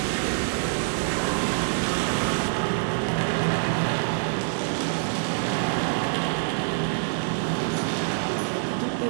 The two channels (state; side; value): silent; left; digital silence